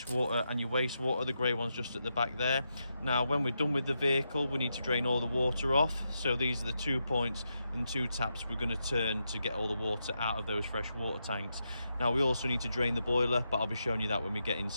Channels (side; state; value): both; inverted; correlation -0.85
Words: water and your wastewater, the grey one's just at the back there. Now when we're done with the vehicle, we need to drain all the water off. So these are the 2 points and 2 taps we're going to turn to get all the water out of those fresh water tanks. Now we also need to drain the boiler, but I'll be showing you that when we get